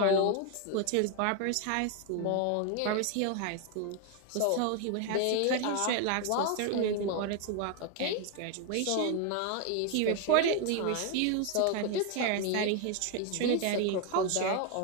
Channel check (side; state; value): both; different; correlation 0.01